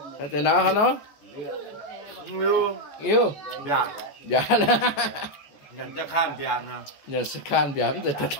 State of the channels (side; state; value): right; late; 14 ms